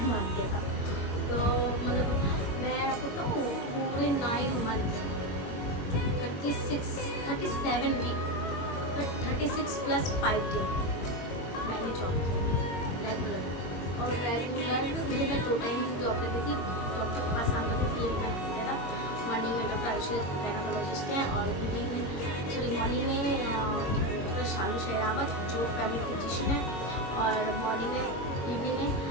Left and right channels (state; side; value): late; right; 22 ms